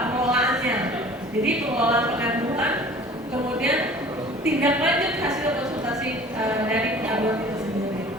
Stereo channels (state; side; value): normal; both; correlation 0.46